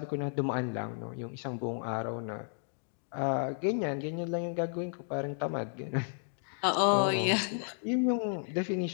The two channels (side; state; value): right; silent; digital silence